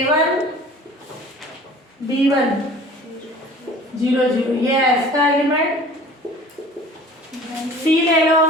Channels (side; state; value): both; normal; correlation 0.45